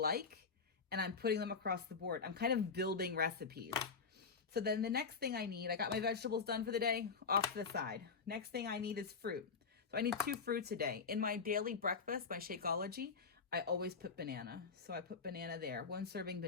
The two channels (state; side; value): quieter; right; 5.2 dB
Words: and I'm putting them across the board. I'm kind of building recipes. So then the next thing I need, I got my vegetables done for the day, off to the side. Next thing I need is fruit. So I need 2 fruits a day. In my daily breakfast, my Shakeology, I always put banana. So I put banana there, 1 serving